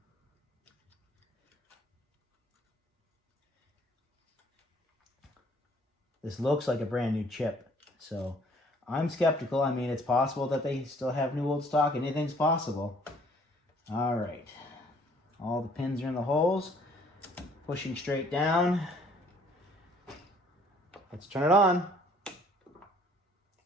This looks like a brand new chip. So I'm skeptical. I mean, it's possible that they still have new old stock. Anything's possible. All right. All the pins are in the holes. Pushing straight down. Let's turn it on.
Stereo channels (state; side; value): normal; both; correlation 0.59